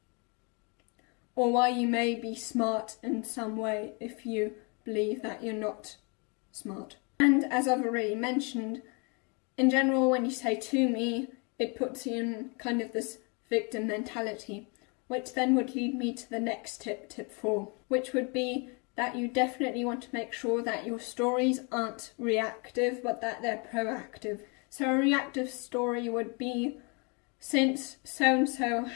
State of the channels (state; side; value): quieter; right; 33.0 dB